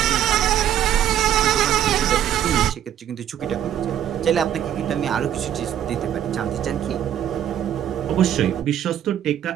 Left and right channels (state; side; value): quieter; left; 10.5 dB